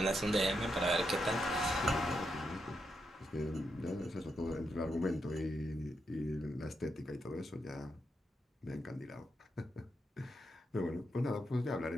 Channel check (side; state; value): both; normal; correlation 0.83